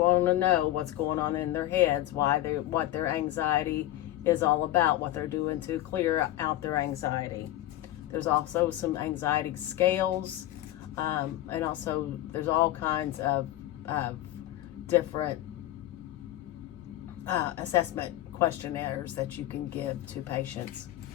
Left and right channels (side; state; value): right; quieter; 14.5 dB